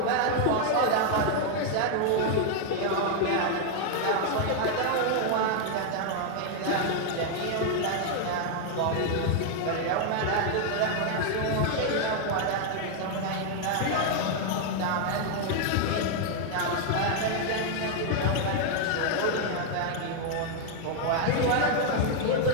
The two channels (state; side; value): different; both; correlation 0.00